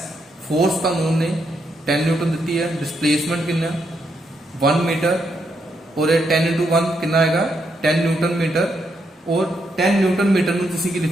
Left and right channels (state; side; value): normal; both; correlation 0.79